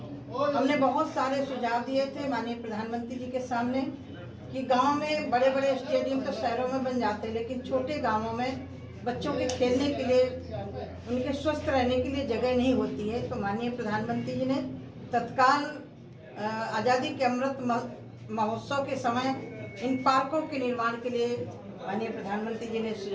हमने बहुत सारे सुझाव दिए थे माननीय प्रधानमंत्री जी के सामने कि गांव में बड़े बड़े स्टेडियम तो शहरों में बन जाते हैं, लेकिन छोटे गांवों में बच्चों के खेलने के लिए, उनके स्वस्थ रहने के लिए जगह नहीं होती है। तो माननीय प्रधानमंत्री जी ने तत्काल आज़ादी के अमृत महोत्सव के समय इन पार्कों के निर्माण के लिए माननीय प्रधानमंत्री जी ने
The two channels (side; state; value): both; identical; correlation 1.00